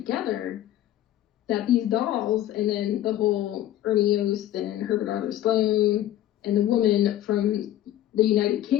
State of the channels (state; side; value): quieter; right; 12.8 dB